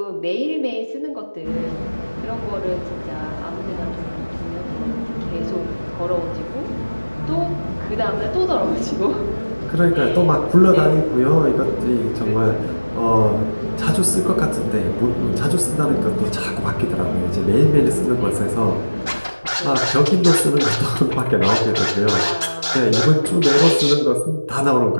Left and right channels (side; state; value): both; inverted; correlation -1.00